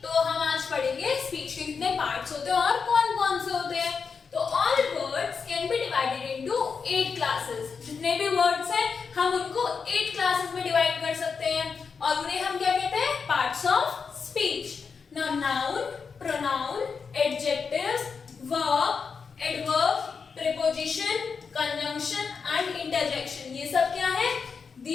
तो हम आज पढ़ेंगे स्पीच के कितने पार्ट्स होते हैं और कौन कौन से होते हैं। तो all words can be divided into 8 classes. जितने भी वर्ड्स हैं हम उनको 8 क्लासेस में डिवाइड कर सकते हैं और उन्हें हम क्या कहते हैं, parts of speech. Now noun, pronoun, adjectives, verb, adverb, preposition, conjunction and interjection, ये सब क्या है,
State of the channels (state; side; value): quieter; right; 5.6 dB